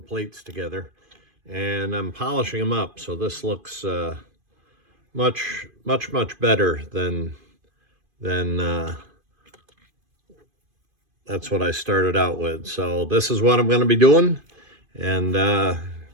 plates together. And I'm polishing them up, so this looks much better than that's what I started out with. So this is what I'm going to be doing, and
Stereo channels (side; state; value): left; late; 2.5 ms